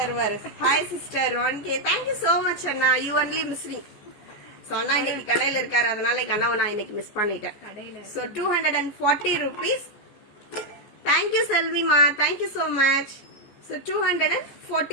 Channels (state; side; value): late; right; 14 ms